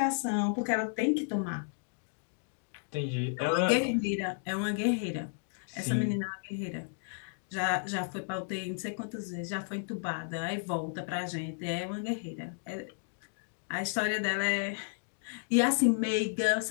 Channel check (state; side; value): silent; right; digital silence